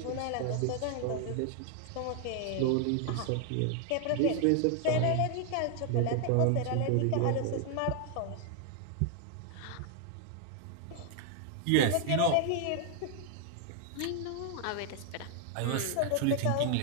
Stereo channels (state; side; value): different; both; correlation 0.00